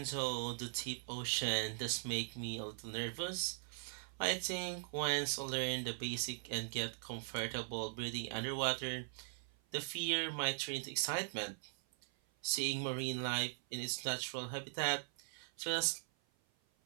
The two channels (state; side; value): silent; left; 51 dB below the other